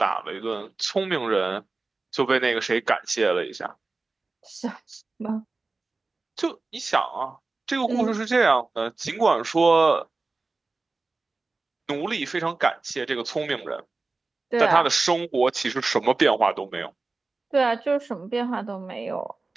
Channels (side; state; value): left; quieter; 3.6 dB